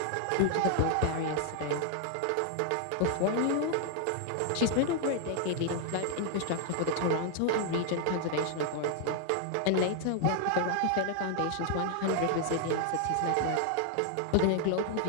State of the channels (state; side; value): different; both; correlation 0.00